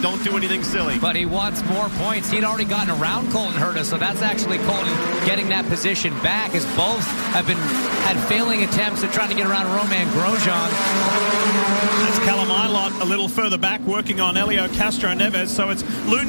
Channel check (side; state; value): both; inverted; correlation -1.00